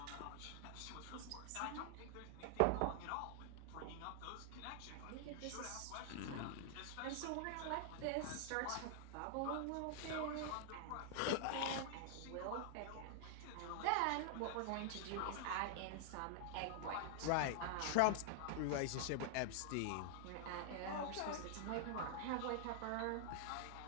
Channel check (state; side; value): different; both; correlation 0.00